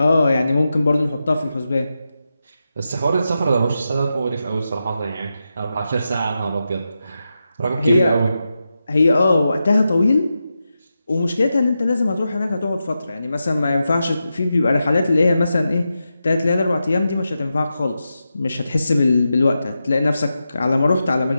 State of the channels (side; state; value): both; inverted; correlation -0.89